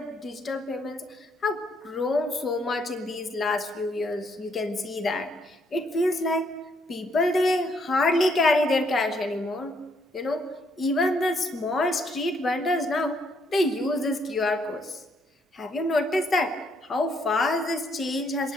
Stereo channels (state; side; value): normal; both; correlation 0.71